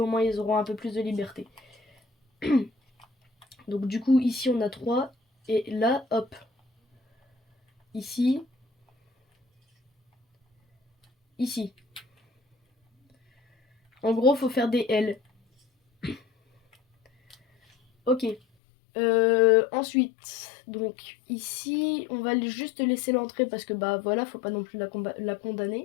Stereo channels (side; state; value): right; drops out; at 18.4 s